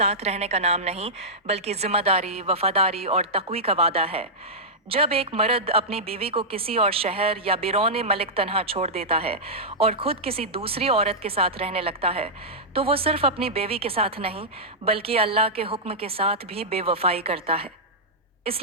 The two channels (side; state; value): both; normal; correlation -0.10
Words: रहने का नाम नहीं, बल्कि जिम्मेदारी, वफादारी और तक़वी का वादा है। जब एक मर्द अपनी बीवी को किसी और शहर या बिरौने मलिक तन्हा छोड़ देता है और खुद किसी दूसरी औरत के साथ रहने लगता है, तो वो सिर्फ अपनी बीवी के साथ नहीं, बल्कि अल्लाह के हुक्म के साथ भी बेवफाई करता है।